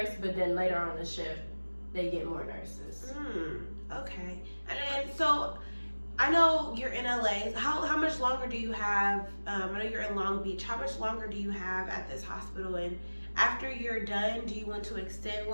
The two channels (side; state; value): both; inverted; correlation -1.00